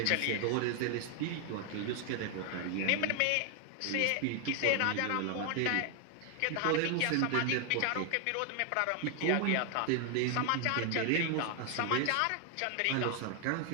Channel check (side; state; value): both; different; correlation 0.00